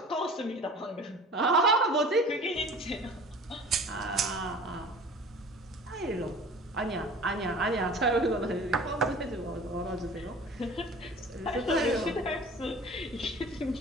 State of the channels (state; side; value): normal; both; correlation 0.43